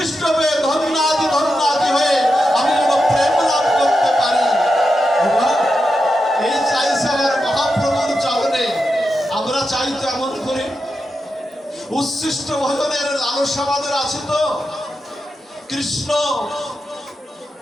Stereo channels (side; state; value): both; normal; correlation 0.88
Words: পেয়ে ধন্যাদি হয়ে আমি যেন প্রেম লাভ করতে পারি। এই চাইছে আমার মহাপ্রভুর চরণে। আমরা চাই তো এমন করে উচ্ছিষ্ট ভজনের লালসা আমাদের আছে তো? কৃষ্ণ